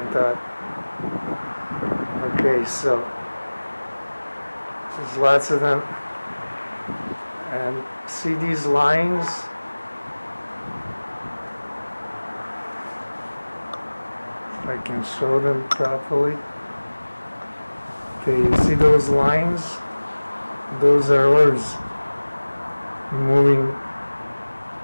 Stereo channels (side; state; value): both; inverted; correlation -1.00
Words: top. Okay, so there's lots of them. And see these lines? If I can show them properly. Okay, you see those lines? Those are orbs moving